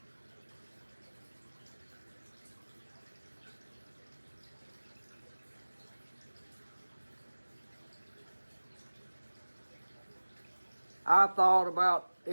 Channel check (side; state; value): both; inverted; correlation -1.00